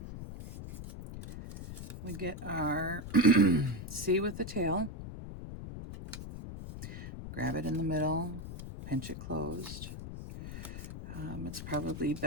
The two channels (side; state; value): left; noise; rumble, 9 dB below the sound